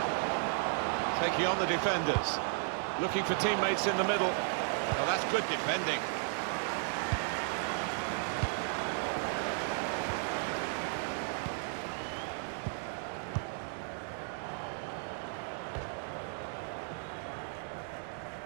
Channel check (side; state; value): left; silent; 55 dB below the other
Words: Taking on the defenders. Looking for teammates in the middle. Oh, that's good defending.